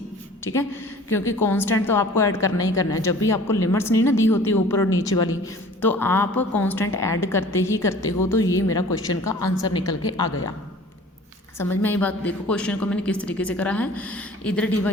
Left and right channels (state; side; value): normal; both; correlation 0.47